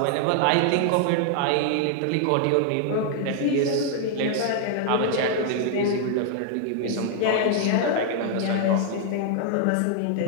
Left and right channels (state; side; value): different; both; correlation 0.00